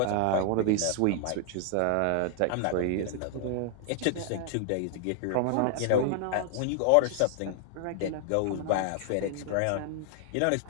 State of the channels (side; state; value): both; different; correlation 0.00